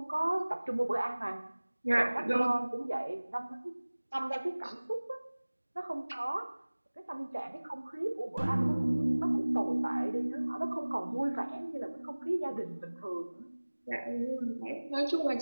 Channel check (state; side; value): inverted; both; correlation -1.00